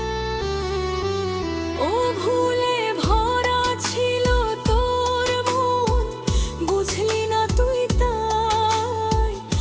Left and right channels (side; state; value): both; identical; correlation 1.00